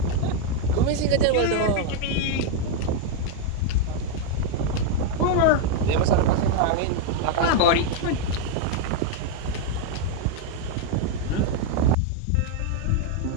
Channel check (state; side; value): different; both; correlation 0.00